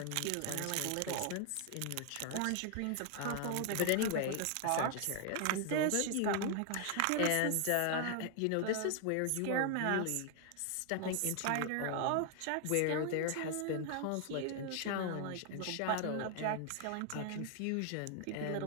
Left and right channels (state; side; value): different; both; correlation 0.00